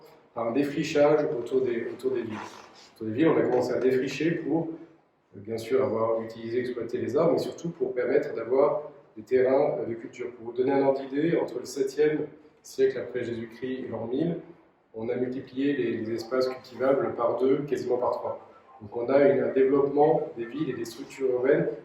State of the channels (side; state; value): both; identical; correlation 1.00